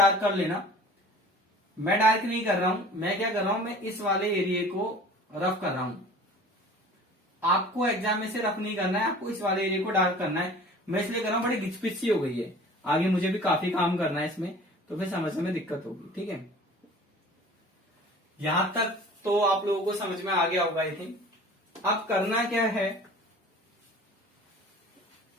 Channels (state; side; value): normal; both; correlation 0.44